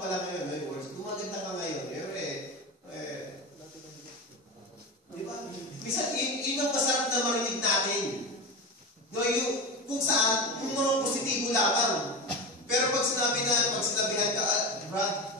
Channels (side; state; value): both; normal; correlation 0.22